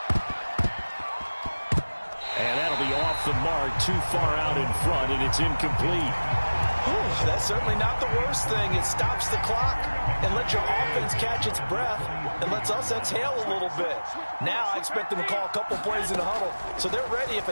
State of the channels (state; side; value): inverted; both; correlation -1.00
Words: And that'll be off the mark, too far out in front, and it's incomplete. Ooh, that's certainly not the worst thing. It stops the clock and lets your offense catch its breath and lets us exhale a little bit. Now I expect them to call a couple plays in the huddle, so they're ready if